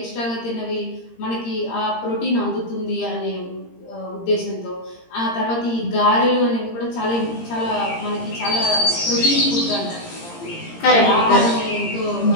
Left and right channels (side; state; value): right; late; 17 ms